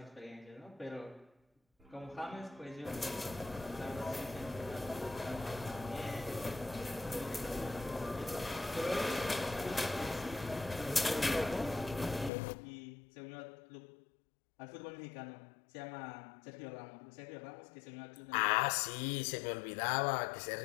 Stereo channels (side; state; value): right; drops out; at 12.3 s